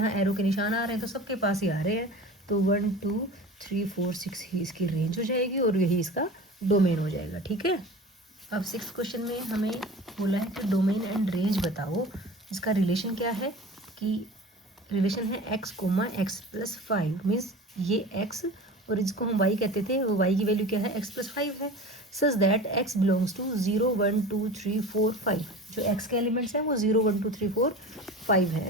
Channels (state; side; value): normal; both; correlation 0.36